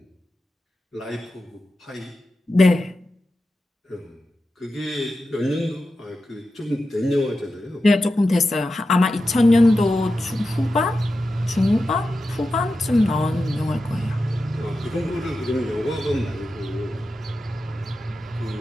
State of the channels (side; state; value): both; normal; correlation 0.91